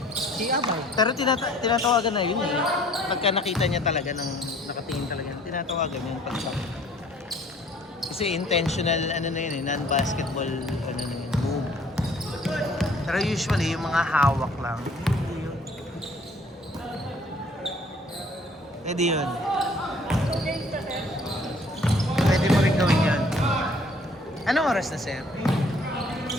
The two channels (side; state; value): both; normal; correlation 0.56